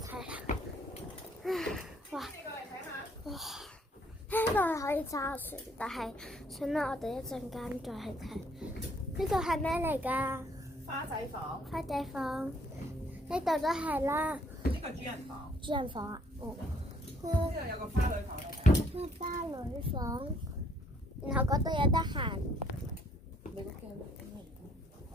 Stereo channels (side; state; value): both; normal; correlation 0.65